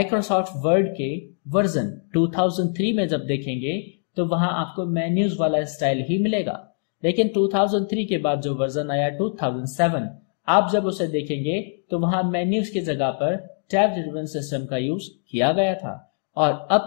वर्ड के वर्जन 2003 में जब देखेंगे तो वहां आपको मेन्यूज वाला स्टाइल ही मिलेगा, लेकिन 2003 के बाद जो वर्जन आया 2007, आप जब उसे देखेंगे तो वहां मेन्यूज की जगह पर टैब्ड रिबन सिस्टम का यूज किया गया था और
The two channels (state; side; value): silent; right; digital silence